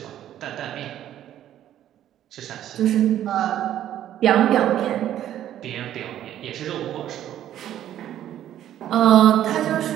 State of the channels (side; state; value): left; quieter; 11.6 dB